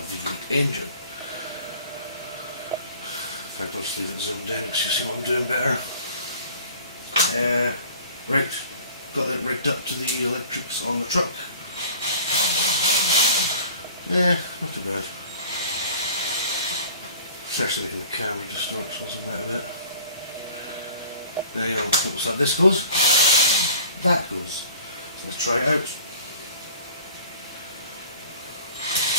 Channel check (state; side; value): inverted; both; correlation -0.46